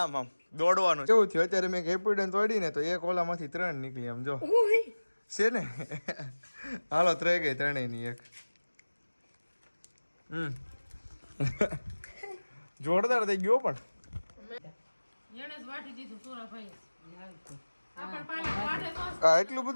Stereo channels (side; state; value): both; inverted; correlation -1.00